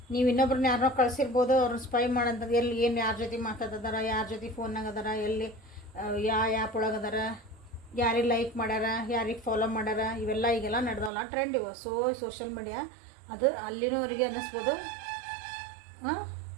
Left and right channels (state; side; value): drops out; left; at 11.1 s